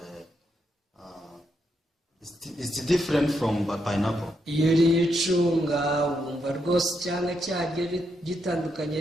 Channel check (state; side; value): normal; both; correlation 0.80